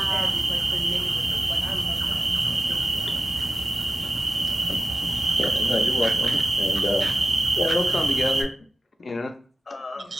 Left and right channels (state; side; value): normal; both; correlation 0.93